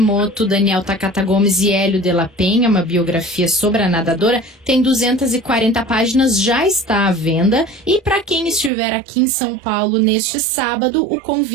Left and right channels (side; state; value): left; drops out; at 8.7 s